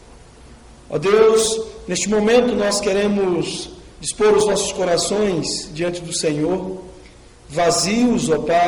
Ó Deus, neste momento nós queremos dispor os nossos corações diante do Senhor, vazios, ó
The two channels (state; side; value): identical; both; correlation 1.00